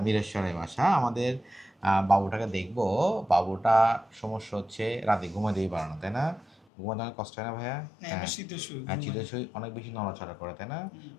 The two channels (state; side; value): drops out; right; at 6.6 s